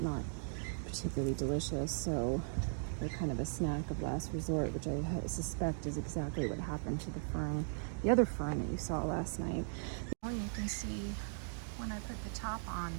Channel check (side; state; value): left; silent; digital silence